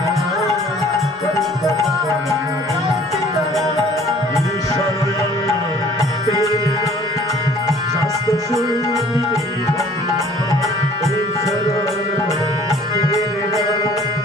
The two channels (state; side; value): normal; both; correlation 0.53